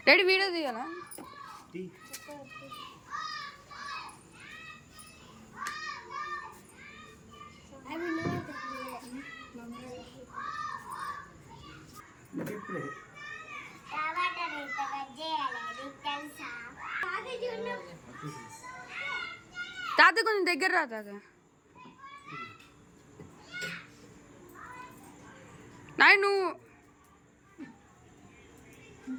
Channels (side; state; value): both; identical; correlation 1.00